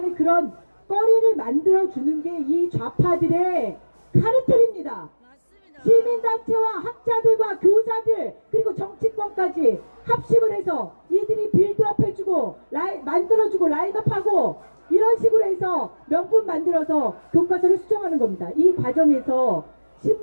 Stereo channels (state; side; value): inverted; both; correlation -1.00